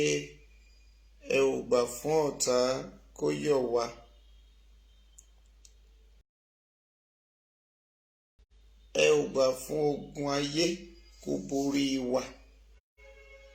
ẹ ò gbà fún ọ̀tá kó yọ̀ wá. Ẹ ò gbà fún ogun ayé kó borí wa.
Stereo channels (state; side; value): identical; both; correlation 1.00